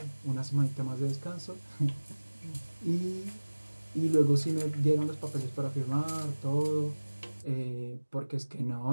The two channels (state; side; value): inverted; both; correlation -1.00